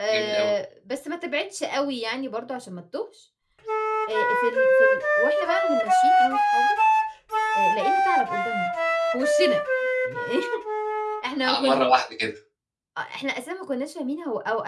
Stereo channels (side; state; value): both; identical; correlation 1.00